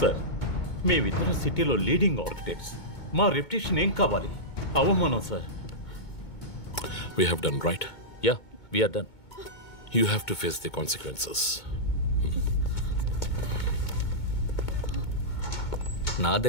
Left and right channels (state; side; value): late; right; 2.2 ms